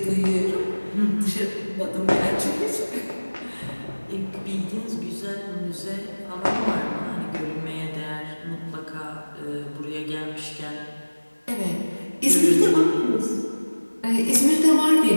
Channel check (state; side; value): inverted; both; correlation -1.00